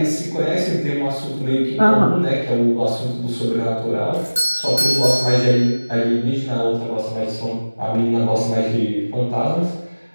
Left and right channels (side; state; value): both; inverted; correlation -1.00